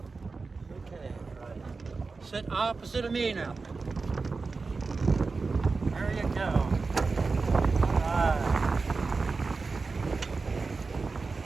Okay. Right. Sit opposite of me now. There you go. All right.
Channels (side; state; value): left; quieter; 4.2 dB